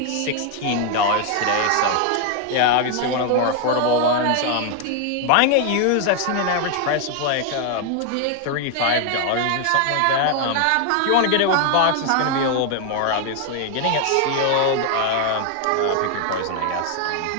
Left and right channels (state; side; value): different; both; correlation 0.00